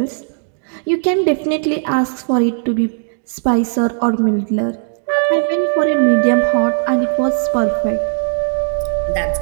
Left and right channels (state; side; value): silent; left; digital silence